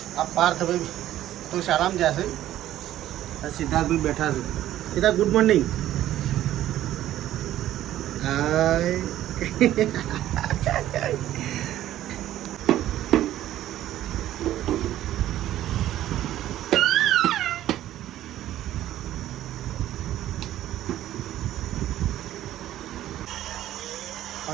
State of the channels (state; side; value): quieter; left; 13.1 dB